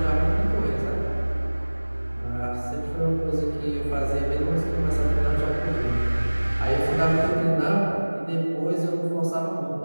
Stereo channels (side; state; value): both; inverted; correlation -1.00